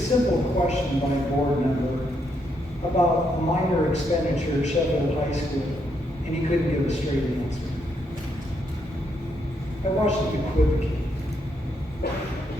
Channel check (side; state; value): both; normal; correlation 0.77